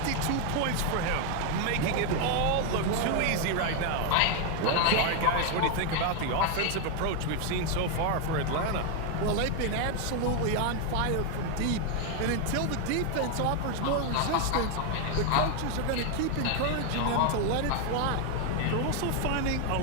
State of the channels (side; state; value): both; different; correlation 0.01